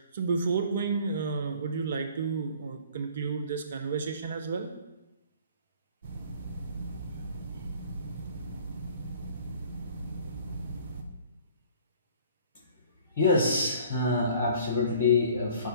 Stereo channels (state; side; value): inverted; both; correlation -0.51